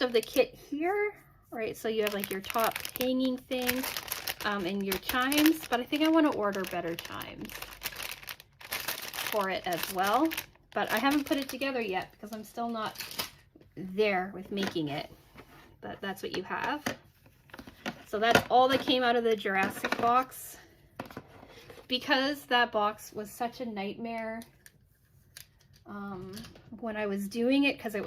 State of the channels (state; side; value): identical; both; correlation 1.00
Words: of the kit here, right? So you have like your top hanging thing and your chimes, but I think I want to order better chimes for it as well. But I haven't put it together yet because I'm still not there with making it. But that's what you have. So that's all that came out of the Jurassic box. Because that box was such a nightmare when I was doing it, because it